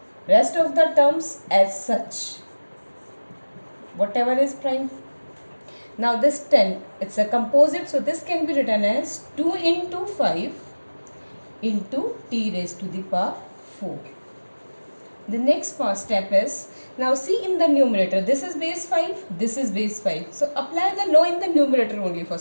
rest of the terms as such, whatever is prime. Now this 10, it's a composite, so this can be written as 2 into 5 into t raised to the power 4. The next step is, now see in the numerator, this is base 5, this is base 5. So apply the law in the numerator only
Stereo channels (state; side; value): inverted; both; correlation -1.00